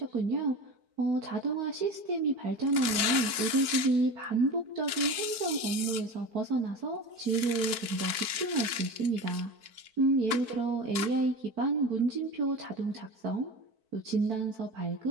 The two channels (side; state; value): left; late; 4.5 ms